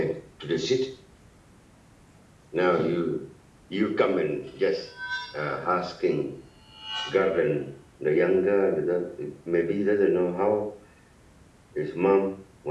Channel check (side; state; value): both; identical; correlation 1.00